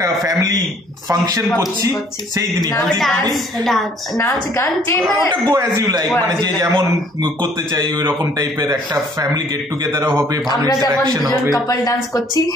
ফ্যামিলি ফাংশন করছি সেই দিনই, নাচ গান, ওটা গো অ্যাজ ইউ লাইক, মানে যে যেমন করতে চাই ওই রকম টাইপের একটা ফ্যামিলি গেট টুগেদারও হবে, ভালো ইন্টারঅ্যাকশন হবে। কাপল ডান্স করছি,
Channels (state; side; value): normal; both; correlation 0.59